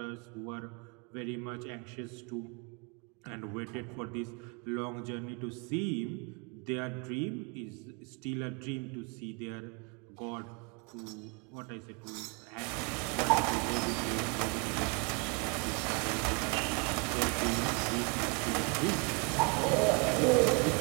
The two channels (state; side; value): quieter; left; 31.6 dB